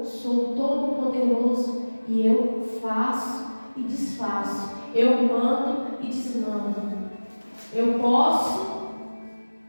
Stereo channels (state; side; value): inverted; both; correlation -1.00